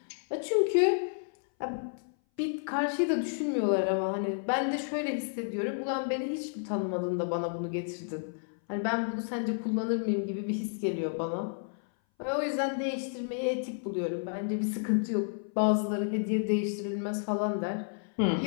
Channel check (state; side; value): silent; right; 57 dB below the other